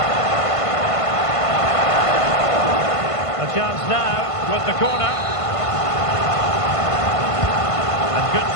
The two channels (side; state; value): right; late; 1.5 ms